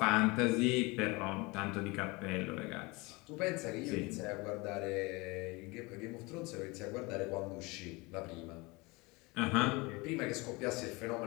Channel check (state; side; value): quieter; right; 25.1 dB